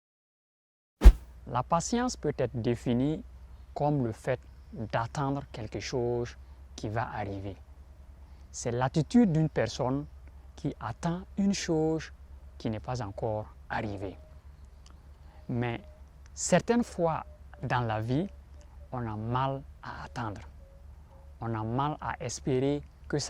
La patience peut être définie comme le fait d'attendre quelque chose qui va arriver. C'est l'attitude d'une personne qui attend une chose qui n'est pas encore arrivée. Mais certaines fois dans la vie, on a mal à attendre. On a mal à espérer que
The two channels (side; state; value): both; identical; correlation 1.00